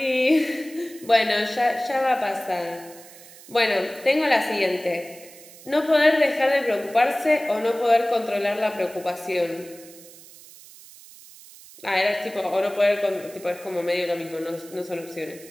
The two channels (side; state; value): right; noise; hiss, 20 dB below the sound